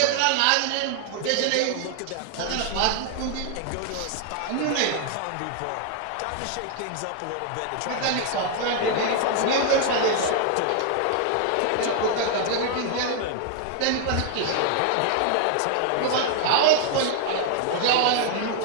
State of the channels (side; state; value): both; different; correlation 0.00